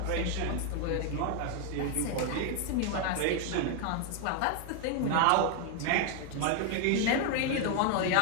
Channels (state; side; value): different; both; correlation 0.01